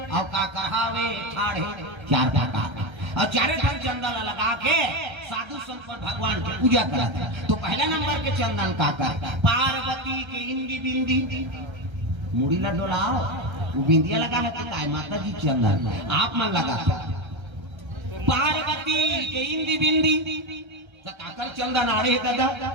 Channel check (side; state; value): left; late; 1.3 ms